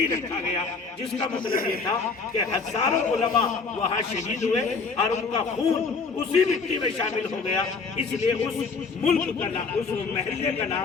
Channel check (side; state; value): right; quieter; 4.7 dB